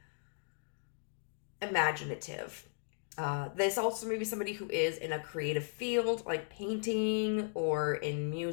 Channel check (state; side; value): silent; right; digital silence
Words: imaginative. This also may be somebody who is in a creative field, like painting or in